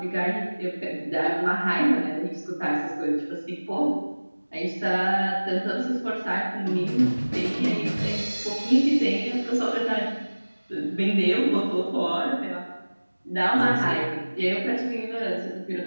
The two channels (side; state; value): both; inverted; correlation -1.00